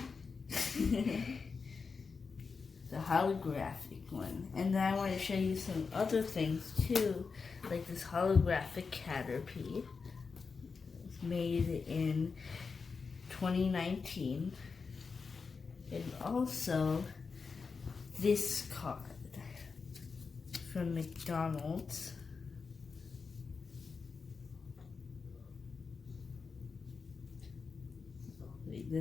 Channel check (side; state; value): right; quieter; 5.0 dB